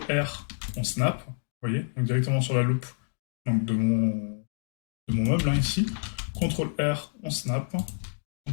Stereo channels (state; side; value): silent; right; digital silence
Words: R, on snap, vous voyez, donc directement sur la loop donc de mon meuble, hein, ici. CTRL R, on snap,